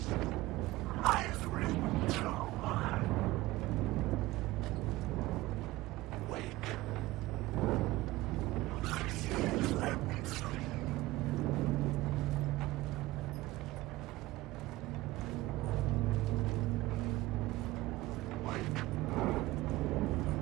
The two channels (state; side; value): quieter; left; 18.1 dB